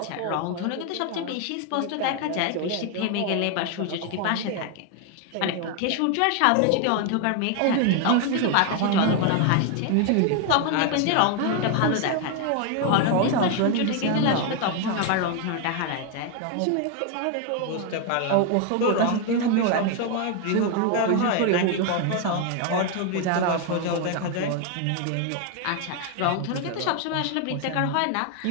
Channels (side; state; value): both; different; correlation 0.01